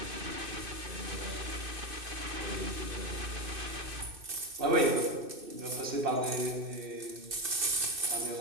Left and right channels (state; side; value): late; left; 2.6 ms